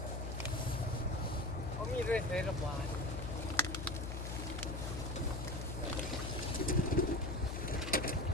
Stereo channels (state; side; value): noise; left; hum, 4 dB below the sound